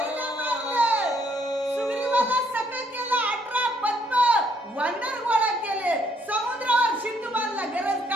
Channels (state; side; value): normal; both; correlation 0.69